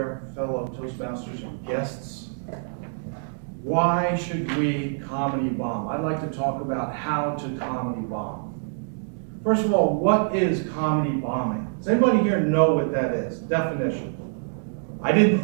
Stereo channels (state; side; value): silent; left; digital silence